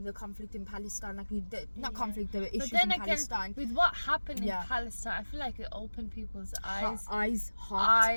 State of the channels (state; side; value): inverted; both; correlation -1.00